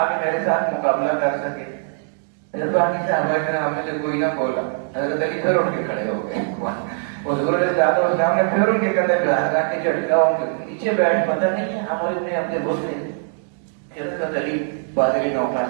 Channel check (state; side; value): silent; left; 65 dB below the other